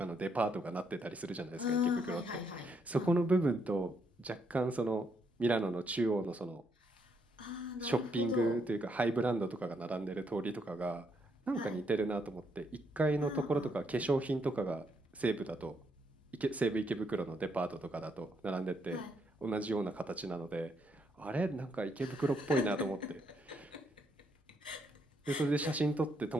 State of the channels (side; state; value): both; normal; correlation 0.75